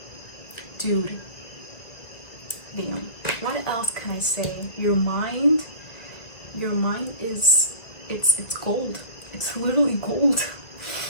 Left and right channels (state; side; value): late; right; 2.1 ms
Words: Dude. Damn. What else can I say? Your mind is, it's gold. It's literally gold.